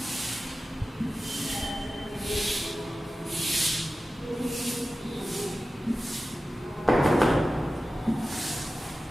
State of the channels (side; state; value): both; normal; correlation 0.94